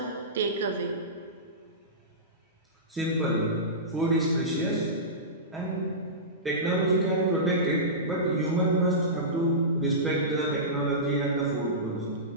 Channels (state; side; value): normal; both; correlation -0.19